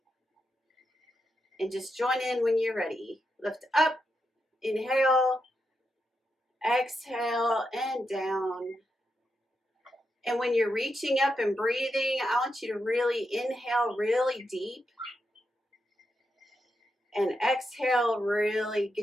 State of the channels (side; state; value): both; normal; correlation 0.85